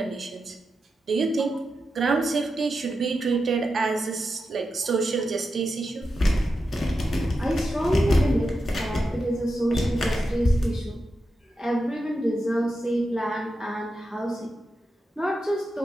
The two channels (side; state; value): both; normal; correlation 0.89